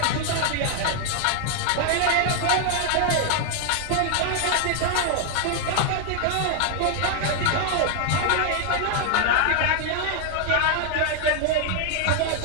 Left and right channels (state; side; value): different; both; correlation 0.00